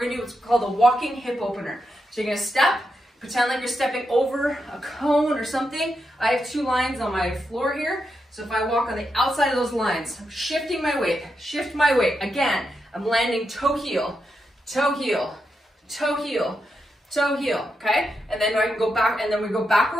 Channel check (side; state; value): both; normal; correlation 0.85